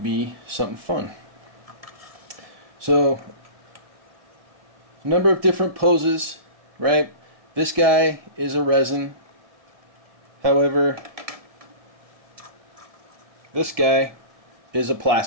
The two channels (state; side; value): late; left; 1.7 ms